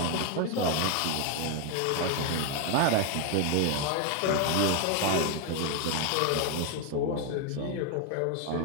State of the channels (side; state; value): both; different; correlation 0.01